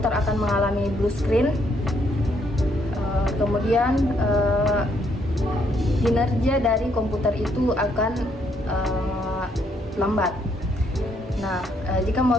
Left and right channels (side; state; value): both; normal; correlation 0.72